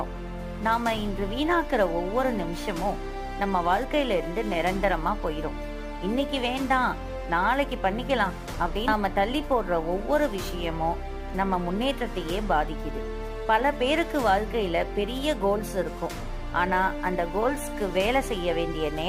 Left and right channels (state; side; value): identical; both; correlation 1.00